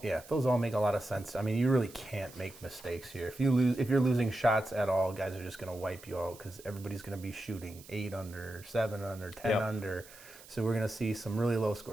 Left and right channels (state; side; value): noise; right; hiss, 20 dB below the sound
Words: Yeah, those all make a lot of sense. I mean, you really can't make mistakes here. If you're losing shots at all, guys are just going to wipe you out because everybody's going to be shooting 8 under, 7 under, 10 under. So we're going to see some really low